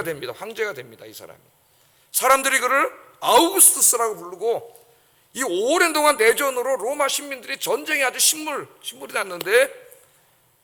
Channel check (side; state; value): both; identical; correlation 1.00